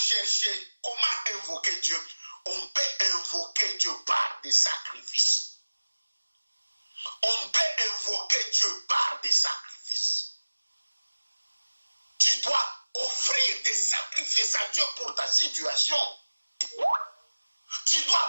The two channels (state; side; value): inverted; both; correlation -1.00